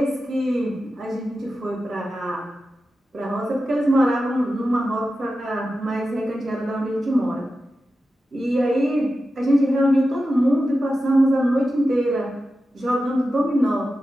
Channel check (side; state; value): both; normal; correlation 0.92